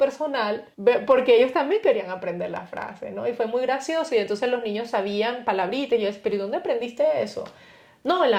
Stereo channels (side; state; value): both; identical; correlation 1.00